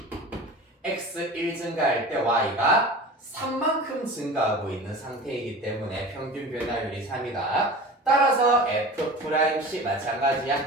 x1 증가할 때 y가 3만큼 증가하고 있는 상태이기 때문에 평균 변화율이 3이다. 따라서 F'C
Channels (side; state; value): both; normal; correlation 0.36